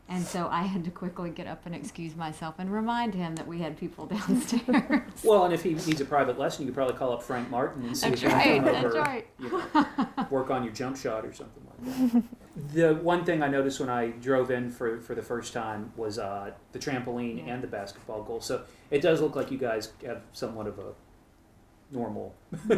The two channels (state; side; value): identical; both; correlation 1.00